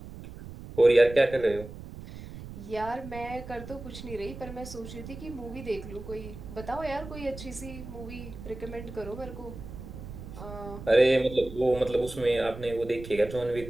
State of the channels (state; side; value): noise; right; rumble, 12 dB below the sound